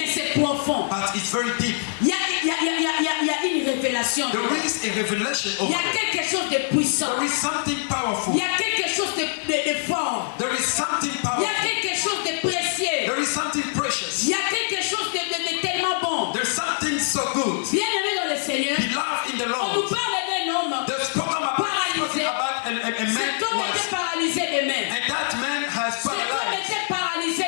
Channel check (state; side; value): silent; right; digital silence